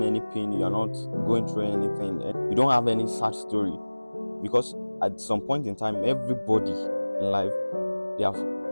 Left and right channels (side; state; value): both; inverted; correlation -1.00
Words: any pain, you are not going through anything, and you don't have any sad story. Because at some point in time, everybody in life, they have